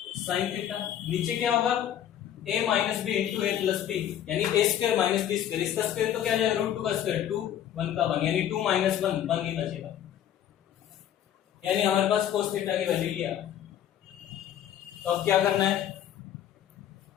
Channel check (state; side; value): quieter; right; 10.7 dB